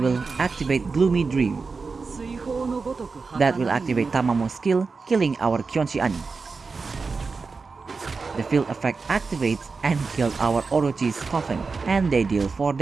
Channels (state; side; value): quieter; left; 4.5 dB